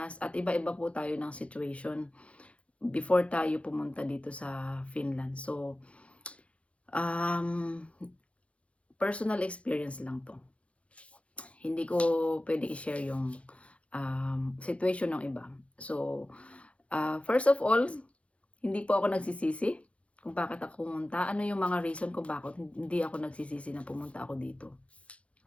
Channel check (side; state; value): right; late; 0.062 ms